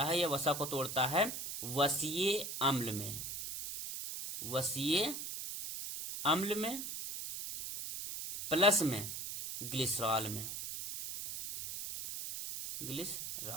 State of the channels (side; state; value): right; noise; hiss, 6 dB below the sound